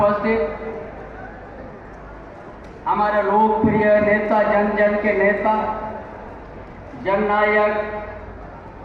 हमारे लोकप्रिय नेता, जन जन के नेता, जननायक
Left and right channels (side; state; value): both; identical; correlation 1.00